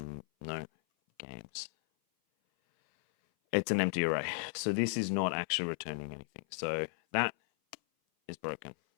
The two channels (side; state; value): right; silent; 54 dB below the other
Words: no games. It's an empty array. So this is not actually returning anything. So that is broken.